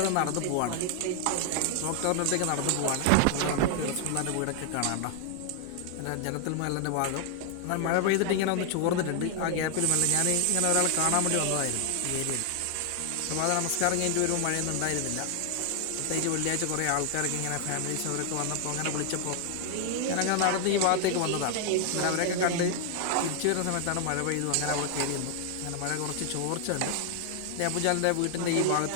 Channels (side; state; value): both; different; correlation 0.00